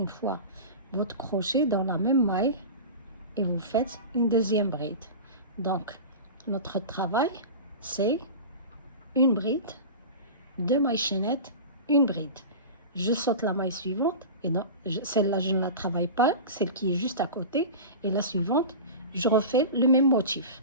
fois votre crochet dans la même maille et vous faites une deuxième bride. Donc notre travail, c'est une bride, 2 mailles chaînettes, une bride. Je saute la maille suivante, et celle-là je ne la travaille pas, celle qui est juste à côté, et la suivante, je refais le même motif.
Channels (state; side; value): inverted; both; correlation -0.30